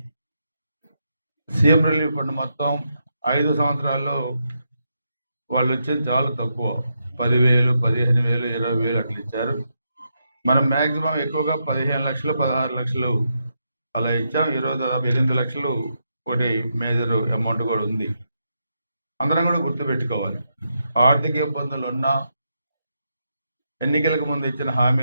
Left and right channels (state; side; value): inverted; both; correlation -0.83